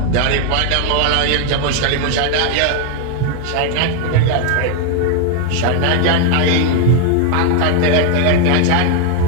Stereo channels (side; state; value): both; different; correlation 0.00